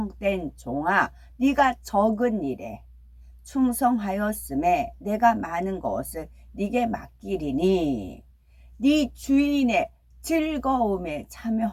종아 네가 적은 일에 충성하였음에 내가 많은 것을 네게 맡기리니 네 주인의 즐거움에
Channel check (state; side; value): identical; both; correlation 1.00